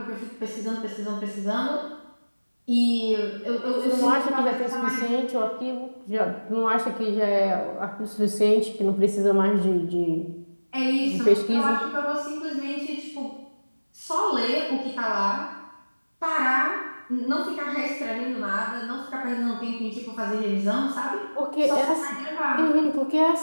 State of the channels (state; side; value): inverted; both; correlation -1.00